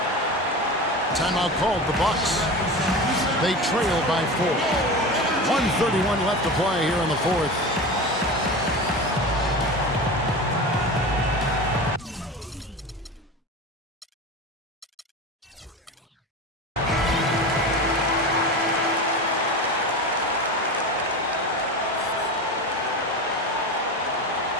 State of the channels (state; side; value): normal; both; correlation 0.28